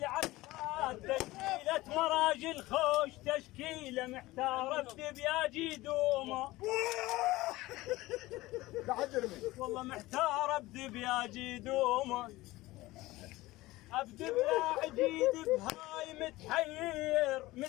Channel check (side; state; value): right; quieter; 18.9 dB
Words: عفات، تشكيلة مراجل خوش، تشكيلة محتارة بدبياجي دومه والله محتارة بدبياجي دومه، ابدب يا عجيد بهاي متحير،